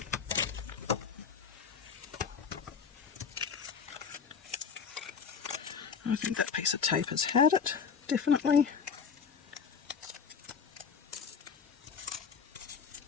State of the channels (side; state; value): right; quieter; 6.3 dB